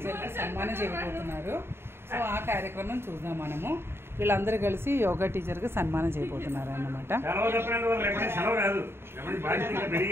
సన్మానం చేయబోతున్నారు. సో ఆ కార్యక్రమం చూద్దాం మనము. వీళ్ళందరూ కలిసి యోగా టీచర్కి సన్మానం చేయబోతున్నారు అన్నమాట.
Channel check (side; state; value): left; late; 0.11 ms